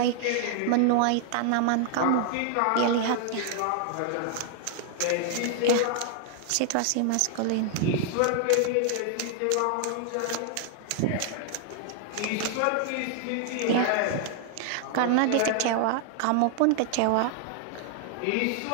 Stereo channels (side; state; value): both; different; correlation 0.00